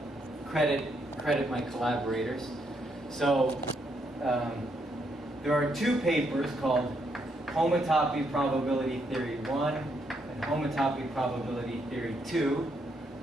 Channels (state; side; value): normal; both; correlation 0.76